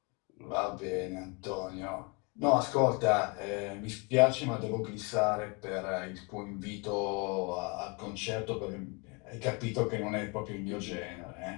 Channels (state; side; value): quieter; right; 30.9 dB